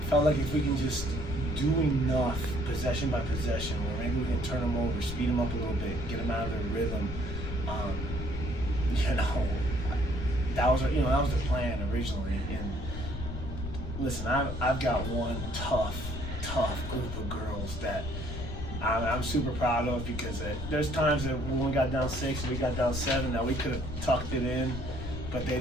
felt like if we can just do enough possession by possession, where maybe we can turn them over, speed them up a little bit, get them out of their rhythm. That was the plan originally. And listen, I've got one tough group of girls that I'm super proud of, because there's times that when we got down 6 and we got down 7 that we could have tucked it in, but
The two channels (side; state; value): left; noise; rumble, 7 dB below the sound